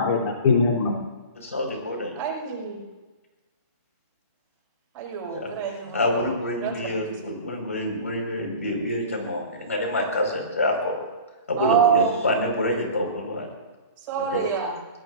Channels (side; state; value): both; inverted; correlation -0.36